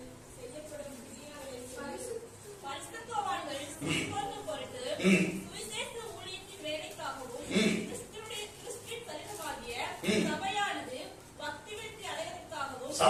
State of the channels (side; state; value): both; identical; correlation 1.00